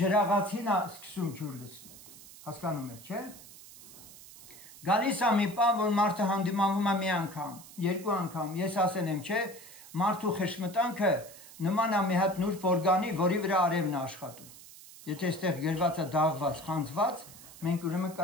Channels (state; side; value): noise; right; hiss, 18 dB below the sound